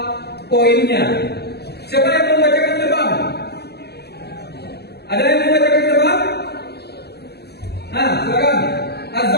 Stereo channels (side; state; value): right; late; 0.48 ms